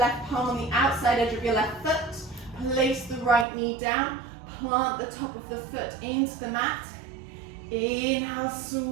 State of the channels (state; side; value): drops out; left; at 3.5 s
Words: palm on the outside edge of your left foot. Place the right knee down. Plant the top of the foot into the mat. Inhale,